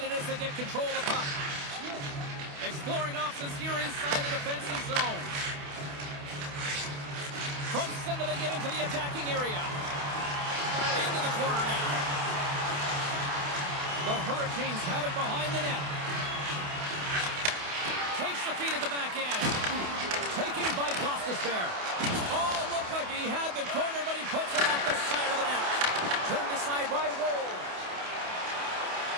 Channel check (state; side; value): late; left; 28 ms